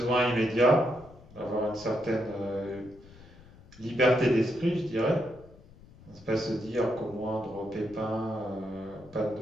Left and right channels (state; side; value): noise; left; rumble, 22 dB below the sound